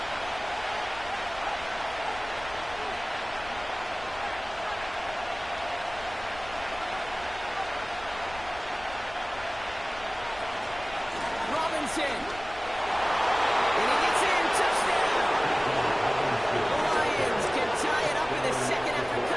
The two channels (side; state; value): left; noise; rumble, 18 dB below the sound